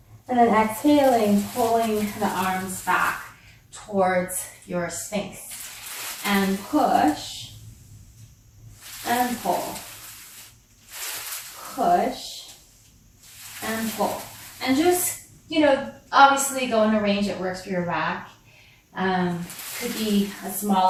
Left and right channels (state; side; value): identical; both; correlation 1.00